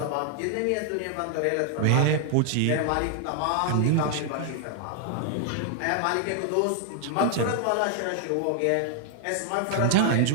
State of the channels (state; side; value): different; both; correlation 0.00